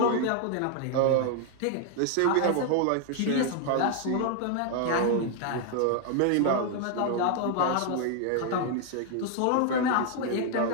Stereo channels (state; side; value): different; both; correlation 0.00